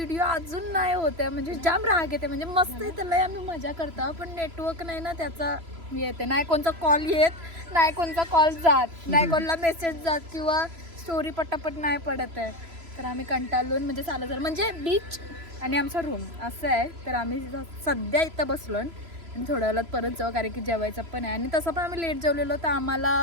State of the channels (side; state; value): left; late; 3.0 ms